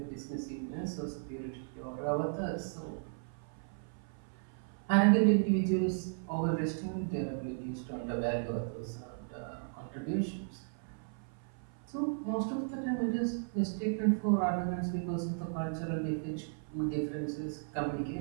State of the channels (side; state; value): left; silent; 54 dB below the other